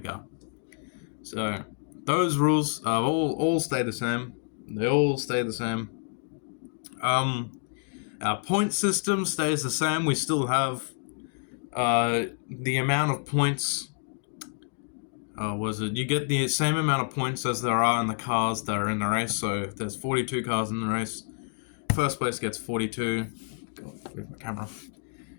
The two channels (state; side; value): silent; right; 59 dB below the other